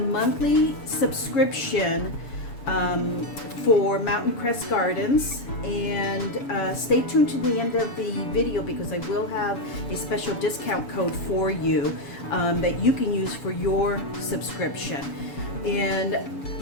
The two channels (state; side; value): late; right; 7.0 ms